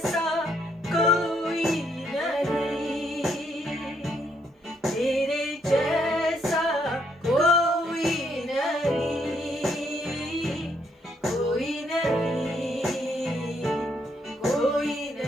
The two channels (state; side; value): normal; both; correlation 0.73